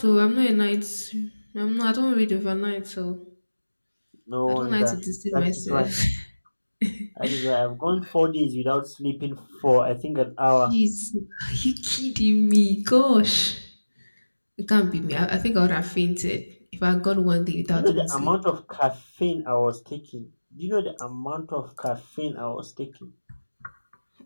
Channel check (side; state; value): both; inverted; correlation -1.00